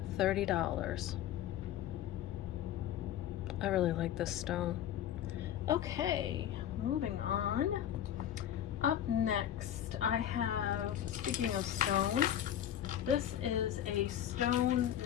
$30. I really like this stone. Okay, moving on. Up next, I have, speaking of stone, this is a stone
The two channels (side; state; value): right; quieter; 10.9 dB